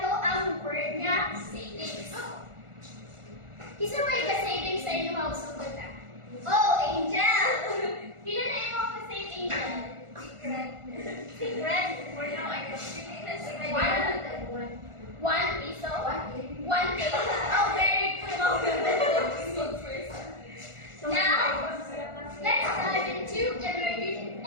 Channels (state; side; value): late; left; 1.4 ms